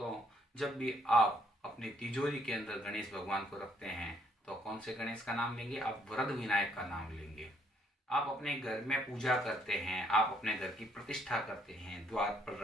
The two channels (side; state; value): both; normal; correlation 0.68